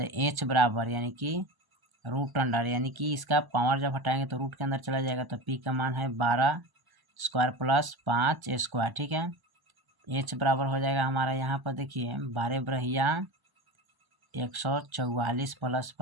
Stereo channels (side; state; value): left; late; 1.0 ms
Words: एच बराबर यानी कि रूट अंडर, यानी कि इसका पावर जब हटाएंगे तो रूट के अंदर चला जाएगा, तो पी का मान है 12 स्क्वायर प्लस 5 स्क्वायर, ठीक है। एच बराबर हो जाएगा हमारा यहाँ पर देखिए 12 बरहिया 144 प्लस